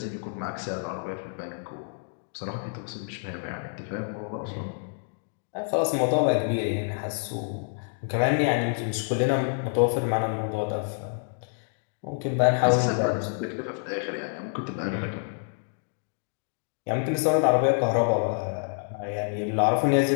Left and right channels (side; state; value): right; silent; digital silence